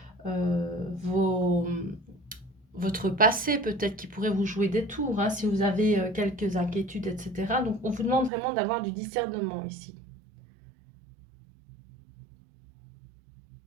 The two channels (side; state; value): left; drops out; at 8.3 s